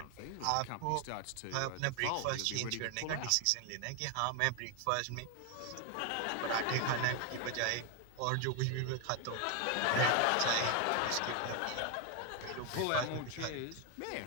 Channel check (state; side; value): different; both; correlation 0.01